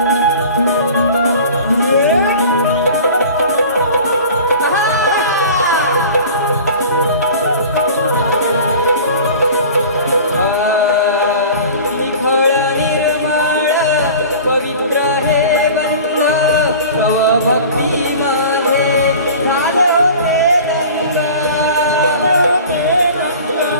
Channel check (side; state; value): both; inverted; correlation -0.40